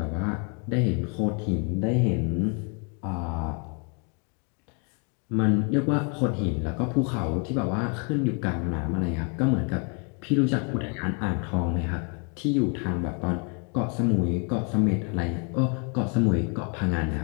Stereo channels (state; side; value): quieter; right; 37.4 dB